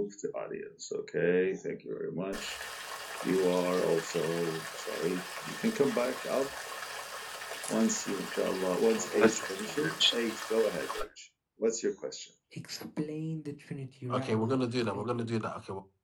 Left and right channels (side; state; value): both; identical; correlation 1.00